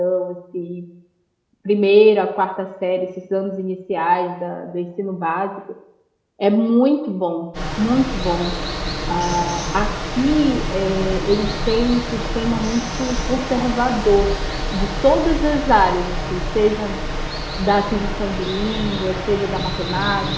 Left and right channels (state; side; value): identical; both; correlation 1.00